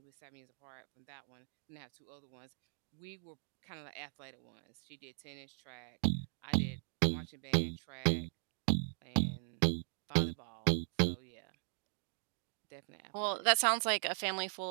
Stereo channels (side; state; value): left; silent; digital silence